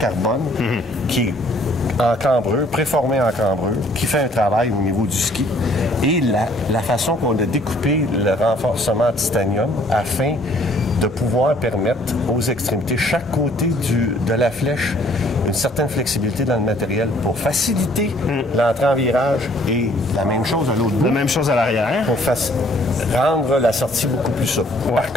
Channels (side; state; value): both; normal; correlation 0.60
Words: qui est en cambrure, préformée en cambrure, qui fait un travail au niveau du ski. Et la façon qu'on a découpé le renforcement en titanium afin de pouvoir permettre aux extrémités, chaque côté de la flèche, une certaine flexibilité dans le matériel pour faciliter l'entrée en virage et la même chose à l'autre bout. La même chose à l'arrière. Pour rendre la sortie beaucoup plus souple. Par